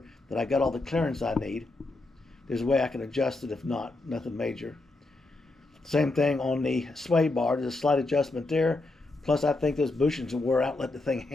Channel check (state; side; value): quieter; right; 3.0 dB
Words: that I got all the clearance I need. There's a way I can adjust it, if not, nothing major. Same thing on the sway bar. There's a slight adjustment there. Plus, I think those bushings will wear out, let the thing